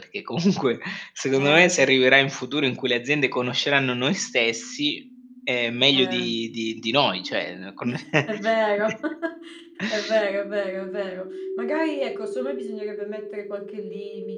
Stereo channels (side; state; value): both; identical; correlation 1.00